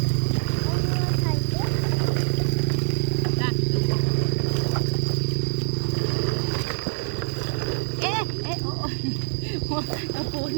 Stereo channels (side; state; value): left; silent; 55 dB below the other